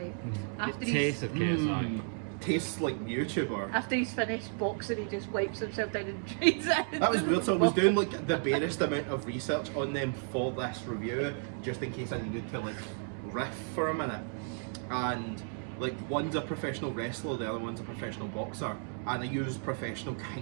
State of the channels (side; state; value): left; silent; 55 dB below the other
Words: After The taste of KSI. Tastes like YouTuber. After he's finished boxing, he just wipes himself down and trades it. That was weird. So I was doing like the barest amount of research on them for this review, just in case I needed to like riff for a minute. And like one's a professional wrestler, the other one's a professional boxer, and I use professional